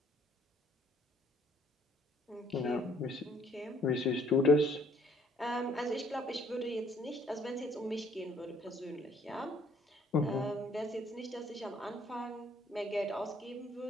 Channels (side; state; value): both; normal; correlation 0.63